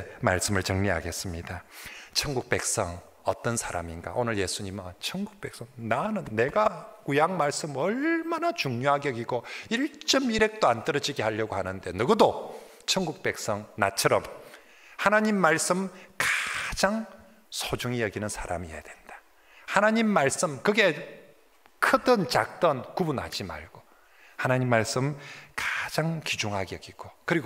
말씀을 정리하겠습니다. 천국 백성 어떤 사람인가? 오늘 예수님은 천국 백성, 내가 구약 말씀 얼마나 중요하게 여기고 1.1핵도 안 떨어지게 하려고 하는데, 누구도 천국 백성 나처럼 하나님 말씀 가장 소중히 여기는 사람이어야 된다. 하나님 말씀, 그게 크든 작든 구분하지 말고 하나님 말씀 가장 귀중하게 여기고,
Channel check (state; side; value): identical; both; correlation 1.00